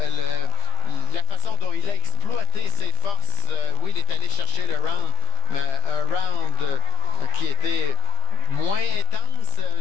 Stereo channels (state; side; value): late; right; 15 ms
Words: la façon dont il a exploité ses forces. Oui, il est allé chercher le round, mais un round qui était moins intense